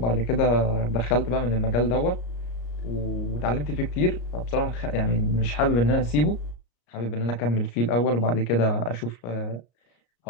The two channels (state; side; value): late; right; 34 ms